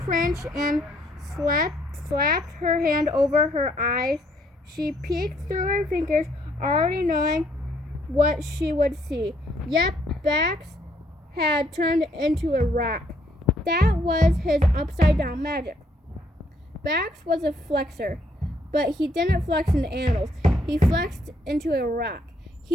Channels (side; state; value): both; normal; correlation 0.69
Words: cringed and slapped her hand over her eyes. She peeked through her fingers, already knowing what she would see. Yep, Bax had turned into a rock. That was his upside-down magic. Bax was a flexor, but he didn't flex into animals. He flexed into a rock.